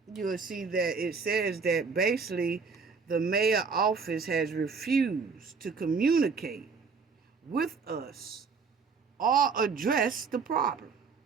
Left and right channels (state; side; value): quieter; left; 5.1 dB